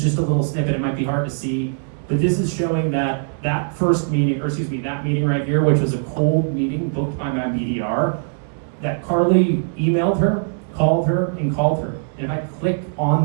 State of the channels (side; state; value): left; silent; digital silence